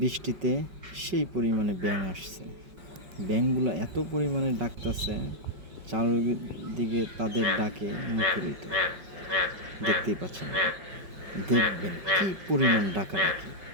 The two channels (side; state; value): left; late; 5.3 ms